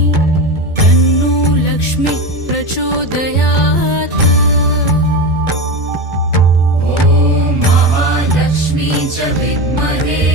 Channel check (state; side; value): late; left; 2.2 ms